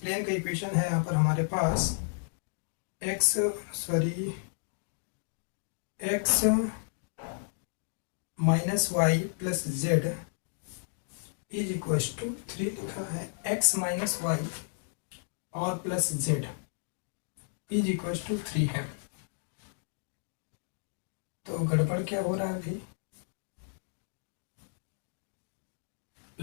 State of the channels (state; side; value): silent; right; digital silence